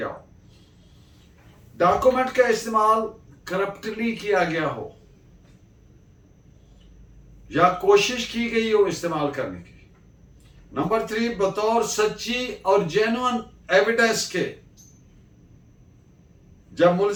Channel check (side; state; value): both; identical; correlation 1.00